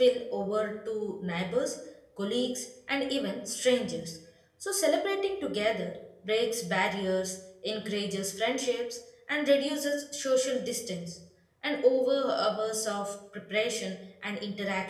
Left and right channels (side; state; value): both; identical; correlation 1.00